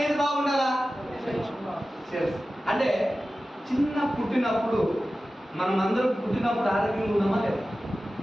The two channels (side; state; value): both; normal; correlation 0.95